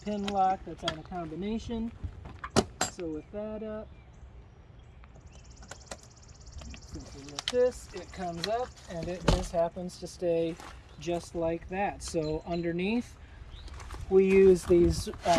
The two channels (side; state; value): both; identical; correlation 1.00